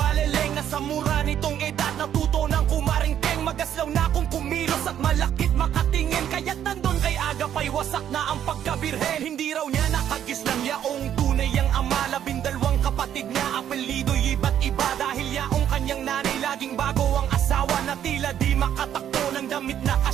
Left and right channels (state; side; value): quieter; left; 10.1 dB